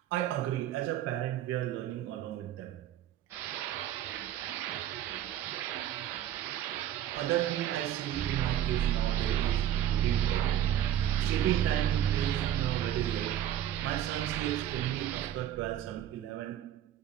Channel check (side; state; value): left; quieter; 11.4 dB